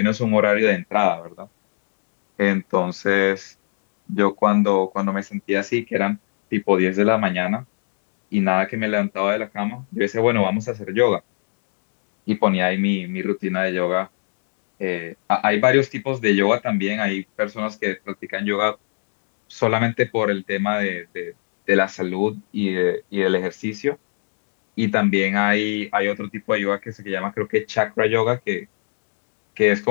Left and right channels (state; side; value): silent; right; 64 dB below the other